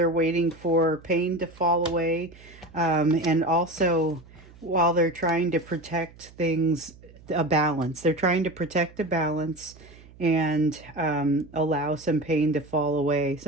waiting for pain to fall away, and also while they're trying to protect things, a balance. They're trying to protect a balance and allow some pain to fall away.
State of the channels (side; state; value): right; noise; hum, 22 dB below the sound